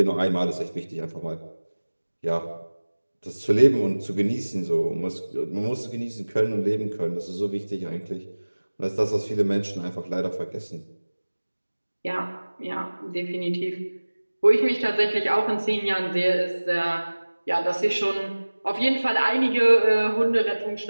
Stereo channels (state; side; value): inverted; both; correlation -1.00